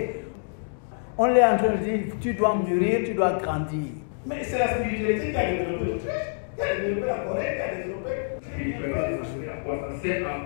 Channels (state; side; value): silent; right; digital silence